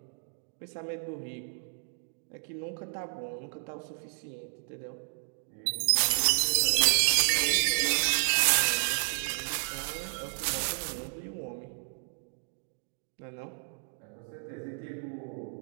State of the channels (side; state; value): left; silent; digital silence